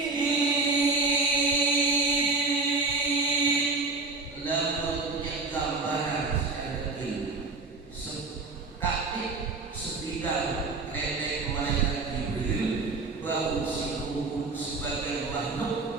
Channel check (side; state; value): left; quieter; 3.8 dB